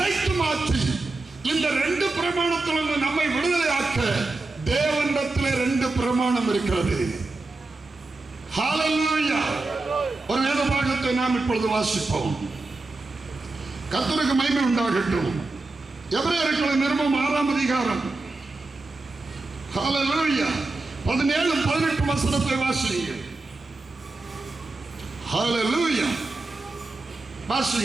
மாற்றி இந்த ரெண்டு பிரமாணத்திலிருந்து நம்மை விடுதலையாக்க தேவனிடத்திலே ரெண்டு பிரமாணம் இருக்கிறது. ஹல்லேலூயா. ஒரு வேத பாகத்தை நாம் இப்பொழுது வாசிப்போம். கர்த்தருக்கு மகிமை உண்டாகட்டும். எபிரேயர்களின் நிருபம் 6ஆம் அதிகாரம் ஹல்லேலூயா 17-18 வசனத்தை வாசியுங்கள். ஹல்லேலூயா.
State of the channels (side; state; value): left; quieter; 3.3 dB